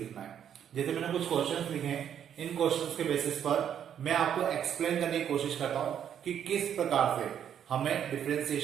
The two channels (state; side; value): quieter; left; 9.2 dB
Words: है. जैसे मैंने कुछ क्वेश्चंस लिखे हैं, इन क्वेश्चंस के बेसिस पर मैं आपको एक्सप्लेन करने की कोशिश करता हूं कि किस प्रकार से हमें